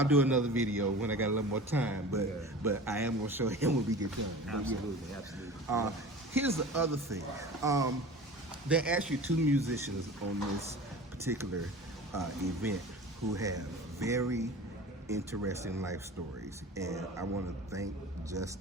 do another video when I got a little more time. But Yeah. but I am gonna show him when we get done. Absolutely, absolutely. Here's the other thing. There are actually two musicians on this particular event who have very interesting life stories, and I want to thank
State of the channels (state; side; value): normal; both; correlation 0.37